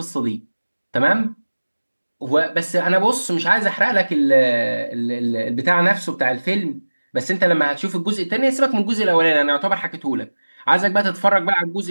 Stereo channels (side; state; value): both; inverted; correlation -1.00